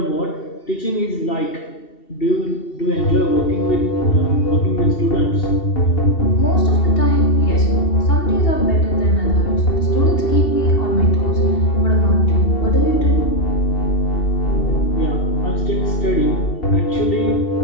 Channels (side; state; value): right; late; 2.7 ms